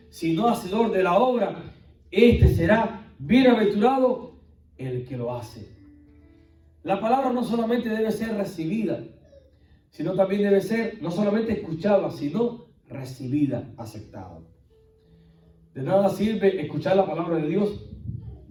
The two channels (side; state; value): both; identical; correlation 1.00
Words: sino hacedor de la obra, este será bienaventurado el que lo hace. La palabra no solamente debe ser recibida, sino también debe ser no solamente escuchada, sino recibida, aceptada. De nada sirve escuchar la palabra de Dios